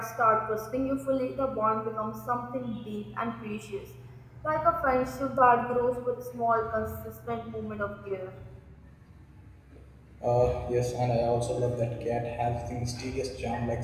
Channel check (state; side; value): identical; both; correlation 1.00